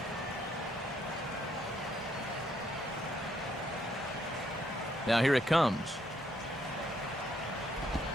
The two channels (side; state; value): both; normal; correlation 0.71